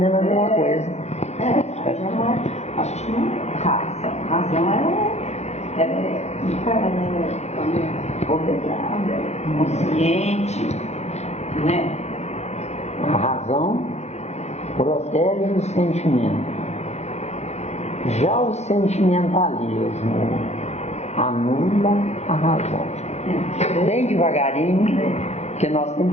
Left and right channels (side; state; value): right; late; 0.32 ms